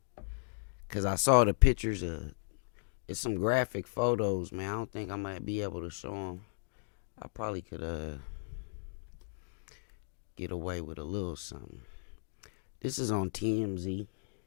Cause I saw the pictures of it's some graphic photos, man. I don't think I might be able to show them. I probably could get away with a little something. This is on TMZ.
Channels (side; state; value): right; silent; digital silence